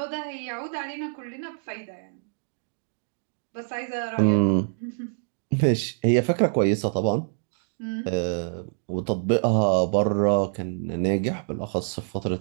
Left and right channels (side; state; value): left; silent; digital silence